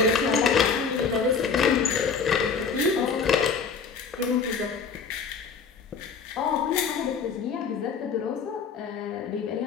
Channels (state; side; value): quieter; right; 5.6 dB